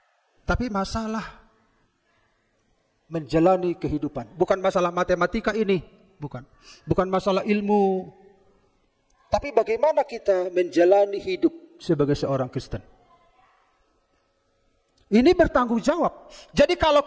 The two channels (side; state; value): both; identical; correlation 1.00